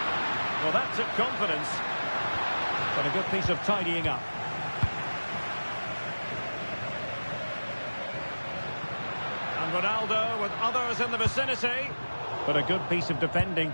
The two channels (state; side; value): inverted; both; correlation -1.00